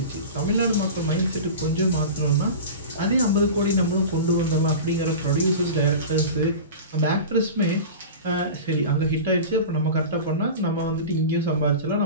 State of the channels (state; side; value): inverted; both; correlation -0.31